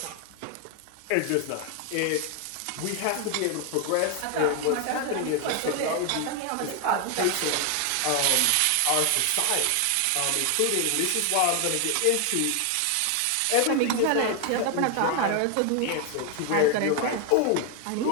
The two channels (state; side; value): different; both; correlation 0.01